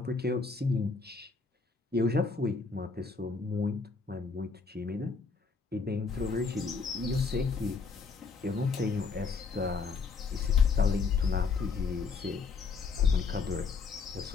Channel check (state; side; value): quieter; right; 4.7 dB